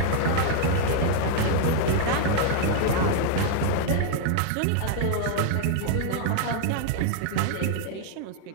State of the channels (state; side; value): different; both; correlation 0.00